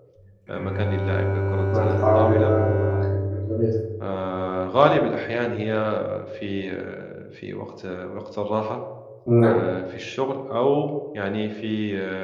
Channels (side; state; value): both; identical; correlation 1.00